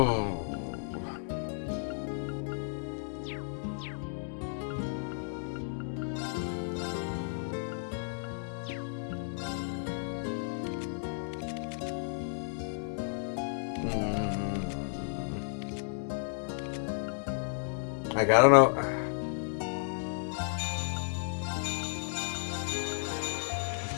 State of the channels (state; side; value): silent; right; digital silence